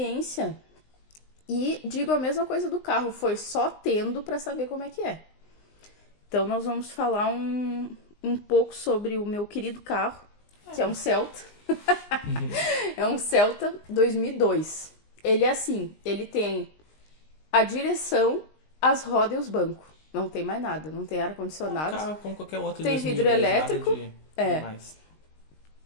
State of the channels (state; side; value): late; right; 20 ms